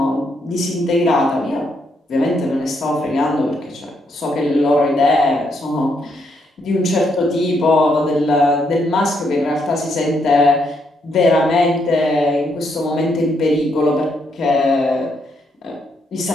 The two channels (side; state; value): both; normal; correlation 0.76